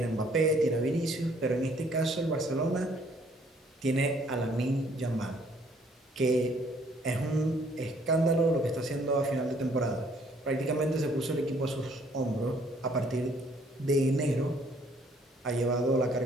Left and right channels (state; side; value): normal; both; correlation 0.63